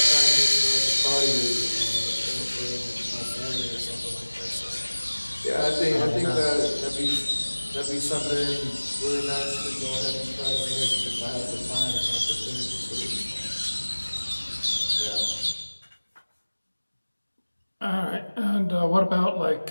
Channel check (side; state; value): both; inverted; correlation -1.00